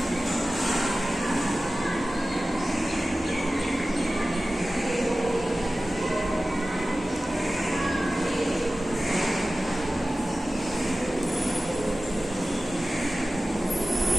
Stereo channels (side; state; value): both; normal; correlation 0.95